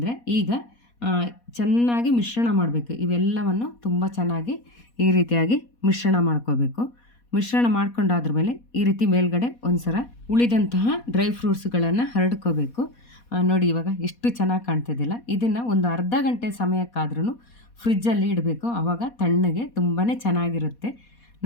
ಈಗ ಚೆನ್ನಾಗಿ ಮಿಶ್ರಣ ಮಾಡಬೇಕು. ಇವೆಲ್ಲವನ್ನು ತುಂಬ ಚೆನ್ನಾಗಿ ಈ ರೀತಿಯಾಗಿ ಮಿಶ್ರಣ ಮಾಡ್ಕೋಬೇಕು. ಮಿಶ್ರಣ ಮಾಡ್ಕೊಂಡಾದ್ರ ಮೇಲೆ ಈ ರೀತಿ ಮೇಲ್ಗಡೆ ಒಂದು ಸಲ ಉಳಿದಂತಹ ಡ್ರೈ ಫ್ರೂಟ್ಸ್ಗಳನ್ನು ಹರಡ್ಕೋಬೇಕು. ನೋಡಿ, ಇವಾಗ ಎಷ್ಟು ಚೆನ್ನಾಗಿ ಕಾಣ್ತಿದ್ದಿಲ್ಲ. ಇದನ್ನು ಒಂದು ಅರ್ಧ ಗಂಟೆ ಸಮಯಕ್ಕಾದ್ರೂ ಫ್ರಿಜ್ಜಲ್ಲಿ ಇಡಬೇಕು. ಆವಾಗ ತಣ್ಣಗೆ ತುಂಬಾ ಚೆನ್ನಾಗಿರುತ್ತೆ.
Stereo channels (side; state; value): right; late; 4.2 ms